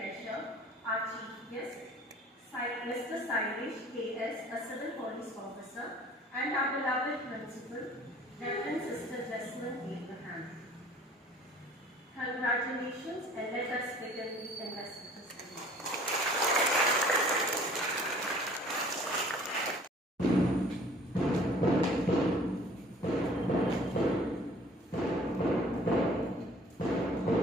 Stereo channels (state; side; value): normal; both; correlation 0.51